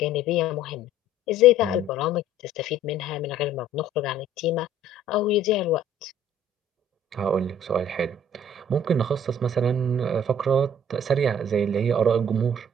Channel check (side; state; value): both; normal; correlation 0.53